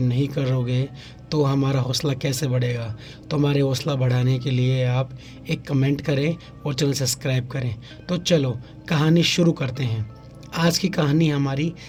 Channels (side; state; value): both; identical; correlation 1.00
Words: नहीं करोगे तो हमारा हौसला कैसे बढ़ेगा? तो हमारे हौसला बढ़ाने के लिए आप एक कमेंट करें और चैनल सब्सक्राइब करें। तो चलो कहानी शुरू करते हैं। आज की कहानी हमारी